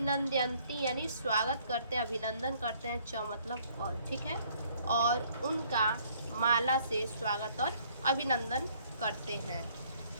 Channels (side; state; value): both; inverted; correlation -0.62